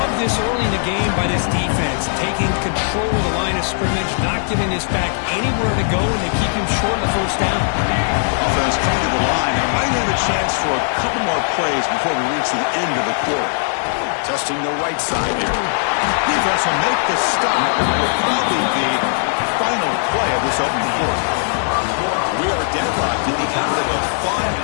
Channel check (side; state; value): right; silent; 63 dB below the other